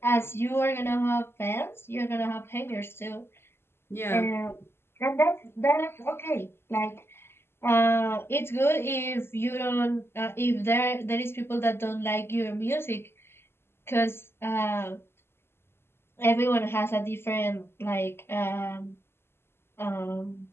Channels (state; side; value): late; right; 0.12 ms